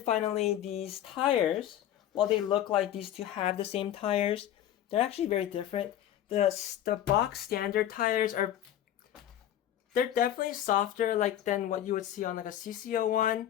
these tires, while they look like these two have the same tires, they're actually very different. The box standard tires they're definitely softer than what you would see on like a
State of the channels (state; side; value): quieter; right; 11.5 dB